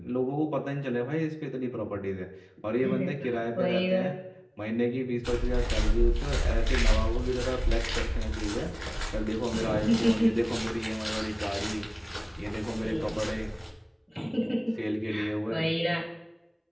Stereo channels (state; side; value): identical; both; correlation 1.00